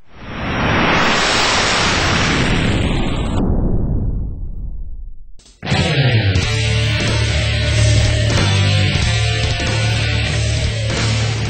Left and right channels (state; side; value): identical; both; correlation 1.00